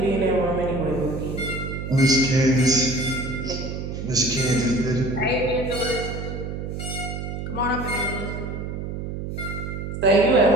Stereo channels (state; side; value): noise; right; hum, 6 dB below the sound